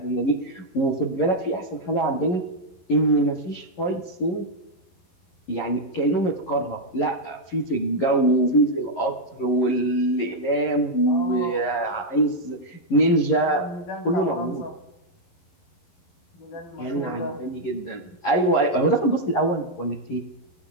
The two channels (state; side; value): late; right; 11 ms